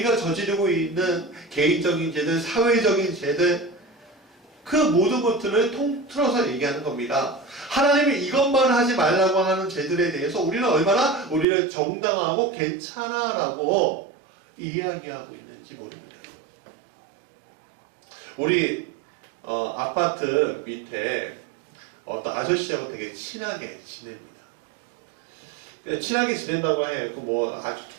저지르고 있는 개인적인 죄들, 사회적인 죄들, 그 모든 것들을 통틀어서 얘기하는 겁니다. 하나님이 이것만 하지 말라고 하는 죄들에 대해서 우리는 얼마나 우리를 정당하고 괜찮아라고 이야기하고 있는지 모릅니다. 우리 아파트 밑에 어떤 아저씨하고 되게 친하게 지냅니다. 친하게 지낸다고 해요. 뭐 아주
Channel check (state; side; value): drops out; left; at 11.5 s